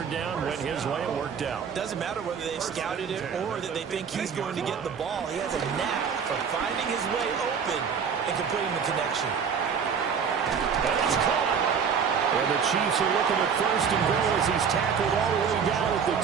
down. Went his way. It worked out. Doesn't matter whether they've scouted it or that they think he's going to get the ball. He has a knack for finding his way open and completing the connection. And it's caught. And the Chiefs are looking at 1st and goal as he's tackled all the way down at the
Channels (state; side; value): quieter; left; 6.7 dB